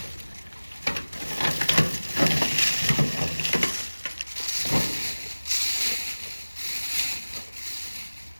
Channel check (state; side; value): inverted; both; correlation -1.00